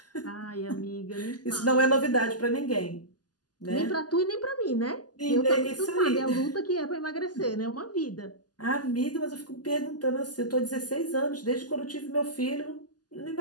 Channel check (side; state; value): right; late; 0.69 ms